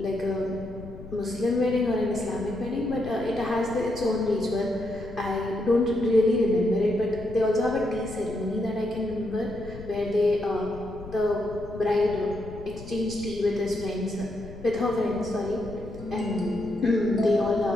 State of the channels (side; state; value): left; noise; rumble, 14 dB below the sound